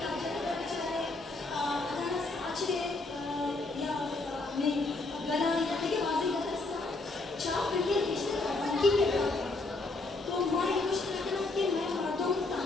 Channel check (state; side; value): quieter; right; 3.3 dB